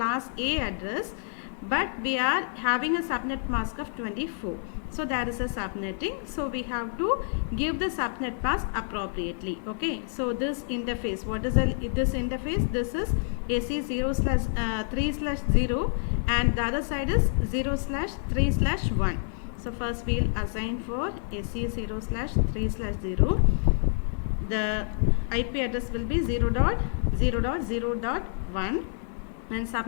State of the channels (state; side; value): silent; right; digital silence